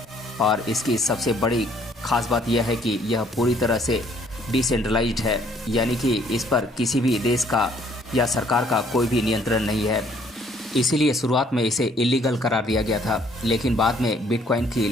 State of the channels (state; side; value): normal; both; correlation 0.62